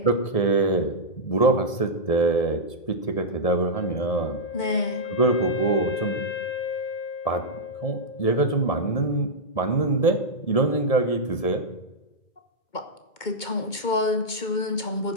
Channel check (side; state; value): right; late; 2.2 ms